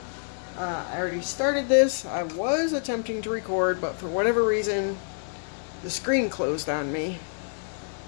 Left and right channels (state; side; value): silent; right; digital silence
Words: I already started this. I was attempting to record, but for whatever reason, the screen closed on me.